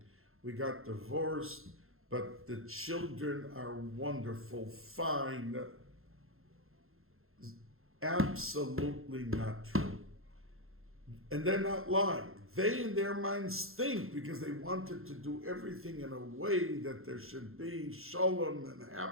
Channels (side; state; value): left; late; 0.61 ms